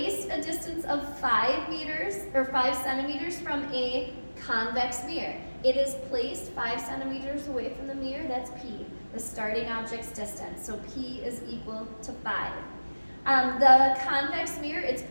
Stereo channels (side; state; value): both; inverted; correlation -1.00